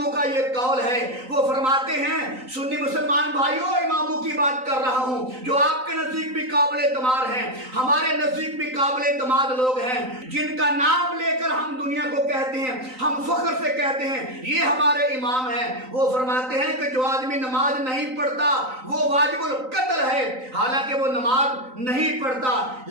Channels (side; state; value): left; late; 3.9 ms